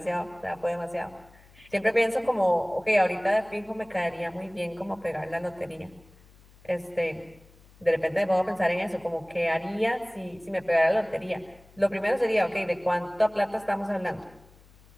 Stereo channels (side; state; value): left; noise; hum, 26 dB below the sound